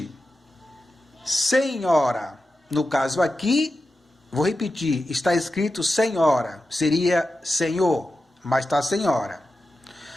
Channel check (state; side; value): normal; both; correlation 0.91